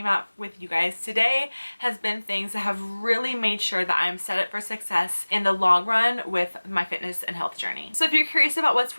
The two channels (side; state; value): both; inverted; correlation -1.00